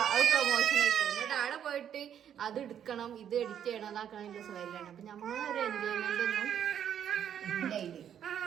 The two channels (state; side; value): quieter; left; 9.3 dB